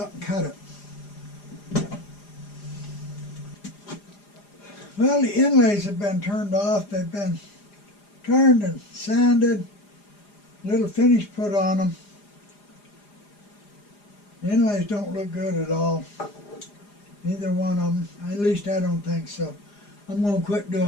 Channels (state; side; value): late; right; 4.9 ms